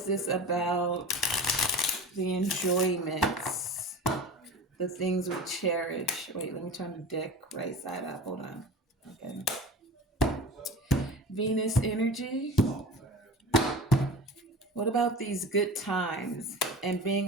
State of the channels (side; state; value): both; normal; correlation 0.35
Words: this about? The enjoyments, the things we cherish. Wait, let me turn the deck right side up. Hold on. Okay. Venus energy. What about these good times and being